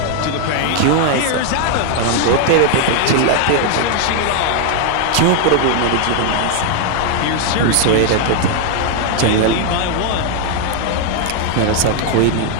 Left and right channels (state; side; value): different; both; correlation 0.00